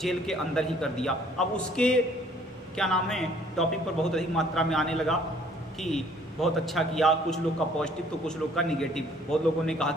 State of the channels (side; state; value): both; normal; correlation 0.59